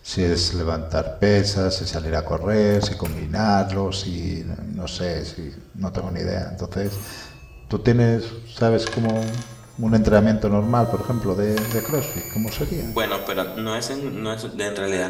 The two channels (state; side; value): identical; both; correlation 1.00